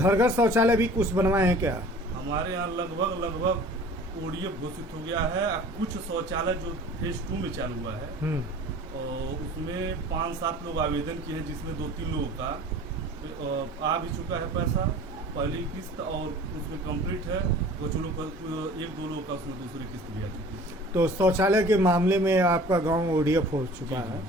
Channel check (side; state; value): both; normal; correlation 0.45